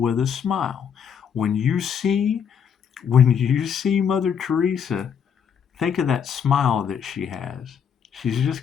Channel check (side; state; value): right; quieter; 7.5 dB